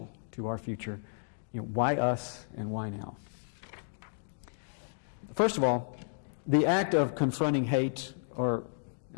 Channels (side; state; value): right; silent; digital silence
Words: to our future? Why us and why now? First of all, the act of confronting hate, or